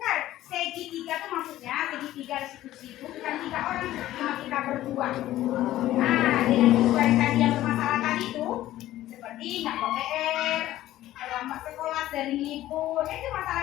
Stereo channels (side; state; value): right; quieter; 14.5 dB